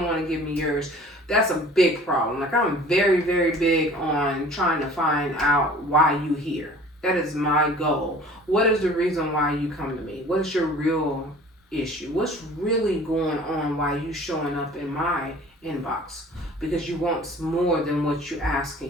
want to give me yours. That's a big problem. Like, I'm very, very big on trying to find out why you here. That is my goal. What is the reason why you come to me? What is your real issue? What's really going on? Why you showing up in my inbox? Because you want more than what you're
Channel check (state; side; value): normal; both; correlation 0.47